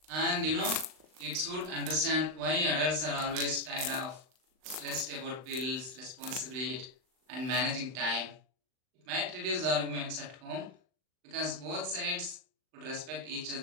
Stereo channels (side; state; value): left; late; 39 ms